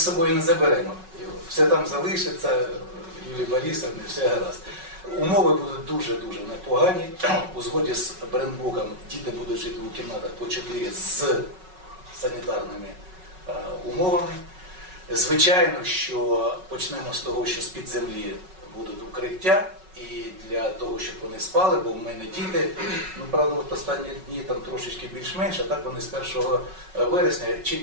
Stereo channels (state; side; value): late; left; 5.4 ms